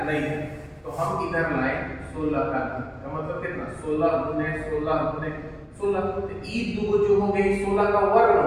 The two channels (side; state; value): both; identical; correlation 1.00